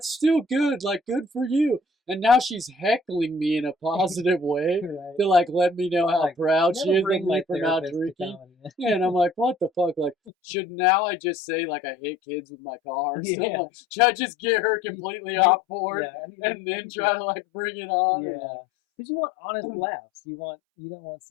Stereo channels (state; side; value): drops out; right; at 10.2 s